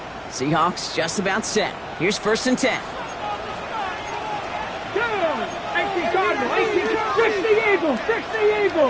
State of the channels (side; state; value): both; identical; correlation 1.00